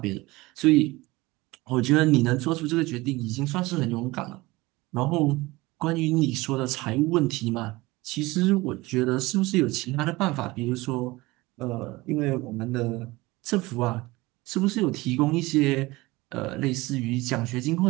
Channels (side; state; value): left; quieter; 21.0 dB